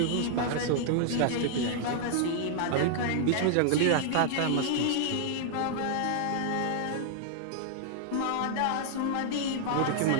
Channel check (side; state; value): both; different; correlation -0.01